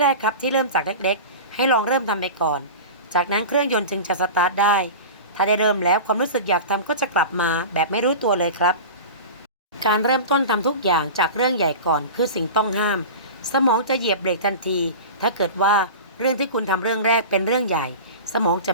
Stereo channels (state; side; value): inverted; both; correlation -0.31